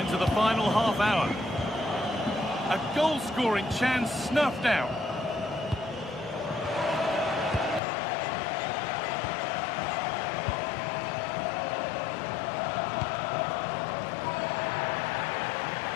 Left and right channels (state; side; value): drops out; right; at 7.8 s